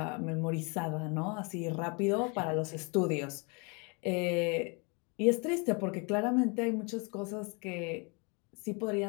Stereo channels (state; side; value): quieter; right; 32.4 dB